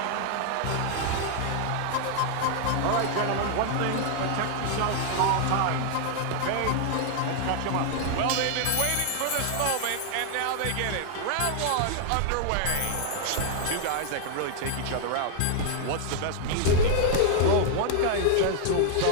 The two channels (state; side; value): different; both; correlation 0.00